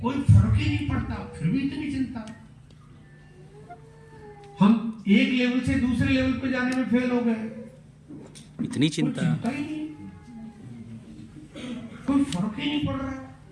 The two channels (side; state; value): both; identical; correlation 1.00